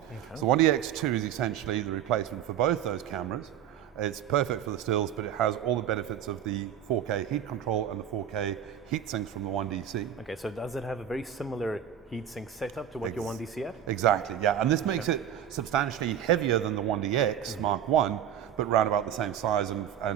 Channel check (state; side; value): quieter; left; 9.8 dB